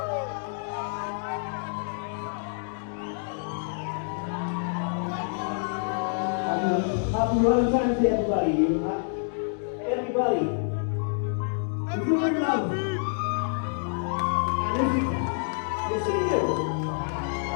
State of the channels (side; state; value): right; silent; digital silence